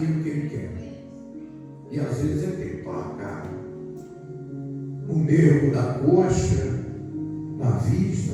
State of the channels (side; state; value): both; identical; correlation 1.00